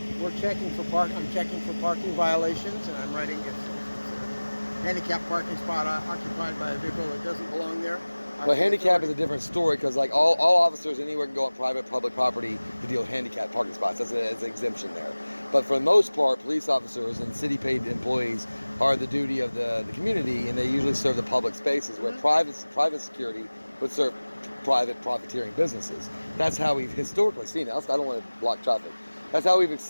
checking for I'm checking for parking violations, and I'm writing it's a handicapped parking spot occupied by a vehicle that doesn't belong there. Well, handicap is a different story because, like, all officers anywhere can go on public property to deal with handicapped parking spots. That's an exemption there. But for the most part, police officers and city-paid employees are the duty of the community, and they usually serve the public spaces where private security would serve private profiteering businesses. That's how we've historically seen it. I don't want to block traffic. That's how we've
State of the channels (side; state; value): both; inverted; correlation -1.00